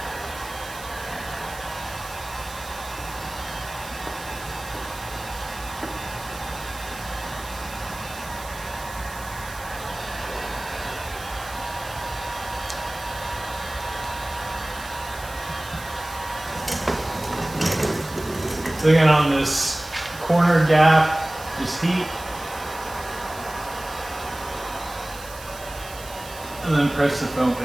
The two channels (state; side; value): noise; right; hiss, 15 dB below the sound